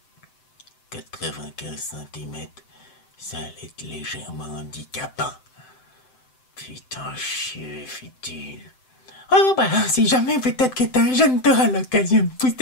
95 cm, Ça allait être légèrement handicapant. Putain, chier, fit-il. Oh bah, si jamais peut-être que t'es un jeune, t'auras l'occasion de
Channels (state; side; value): late; right; 7.8 ms